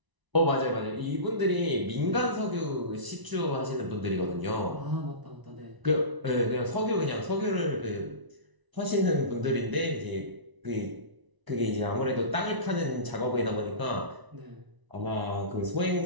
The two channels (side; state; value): left; late; 1.0 ms